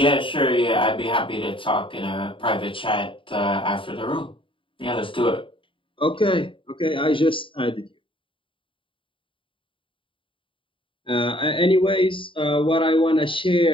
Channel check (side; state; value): right; late; 0.25 ms